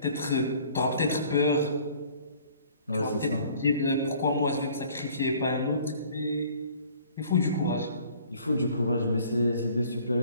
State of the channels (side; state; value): both; inverted; correlation -0.54